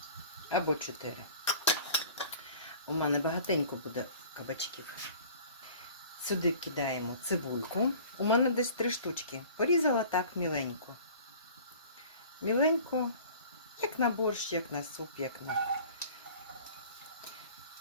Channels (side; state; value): both; inverted; correlation -0.46